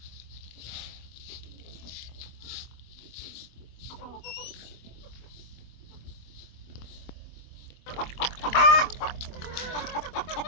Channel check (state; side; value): late; right; 24 ms